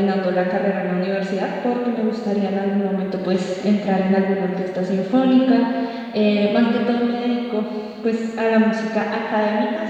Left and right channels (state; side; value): identical; both; correlation 1.00